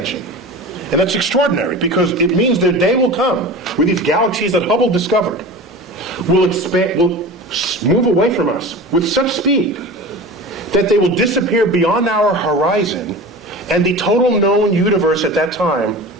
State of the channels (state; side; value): normal; both; correlation 0.34